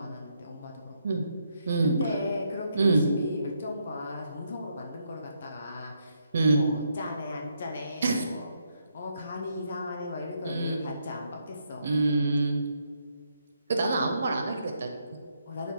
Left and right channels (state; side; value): inverted; both; correlation -0.77